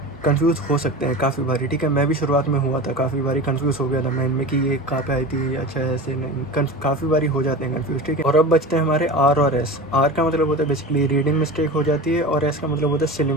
कंफ्यूज हो सकते हैं काफ़ी बारी, ठीक है। मैं भी शुरुआत में हुआ था, काफ़ी बारी कंफ्यूज हो गया था मैं इनमें कि ये कहाँ पे आई थी, अच्छा ऐसे नहीं, काफ़ी बारी हो जाते हैं कंफ्यूज, ठीक है। और अब बचते हैं हमारे आर और एस। आर का मतलब होता है बेसिकली रीडिंग मिस्टेक हो जाती है, और एस का मतलब होता है सिली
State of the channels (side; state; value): both; normal; correlation 0.31